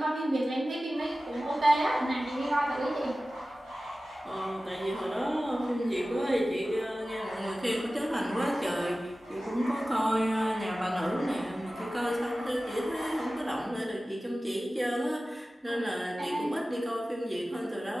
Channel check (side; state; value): both; normal; correlation 0.96